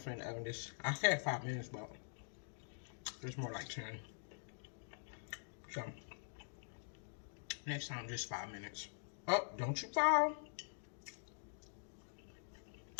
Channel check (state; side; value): silent; right; digital silence